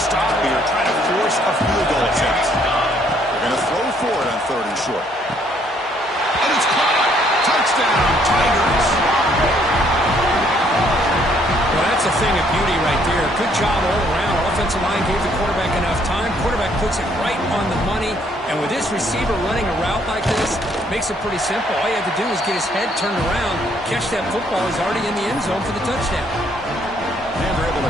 here, trying to force a field goal attempt. Going to throw for it on 3rd and short. And it's caught. Touchdown, Tigers. Well, that's a thing of beauty right there. Good job all around. Offensive line gave the quarterback enough time. Quarterback puts it right on the money. And with this receiver running a route like this, makes it pretty simple. All you have to do is get his head turned around, catch that football. He's already in the end zone for the touchdown. And they're able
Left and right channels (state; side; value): normal; both; correlation 0.66